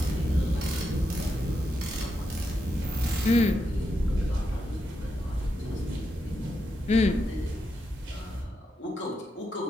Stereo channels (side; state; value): both; normal; correlation 0.84